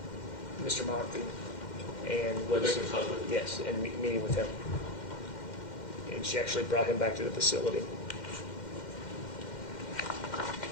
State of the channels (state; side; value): late; right; 2.1 ms